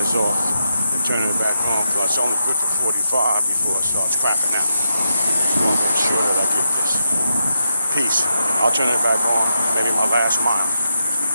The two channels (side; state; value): both; inverted; correlation -0.84